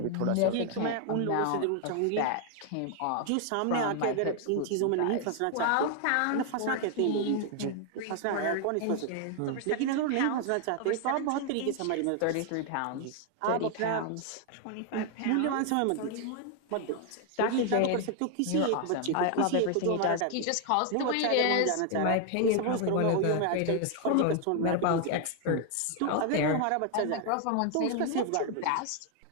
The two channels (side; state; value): both; different; correlation 0.00